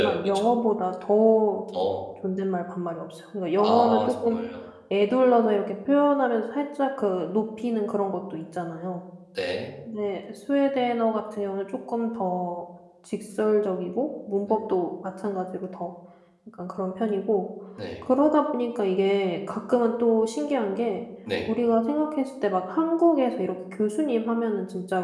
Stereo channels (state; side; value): identical; both; correlation 1.00